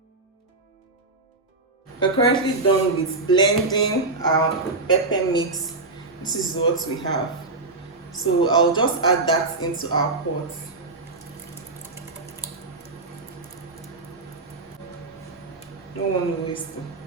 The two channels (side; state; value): left; quieter; 3.3 dB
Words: We're currently done with blending our pepper mix. This is what we have. So I'll just add that into our pot. Don't want to waste it.